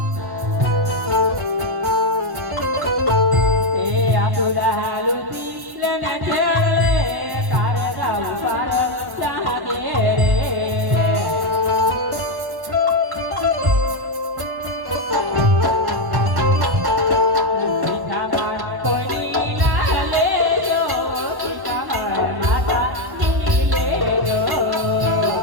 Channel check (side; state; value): left; late; 1.1 ms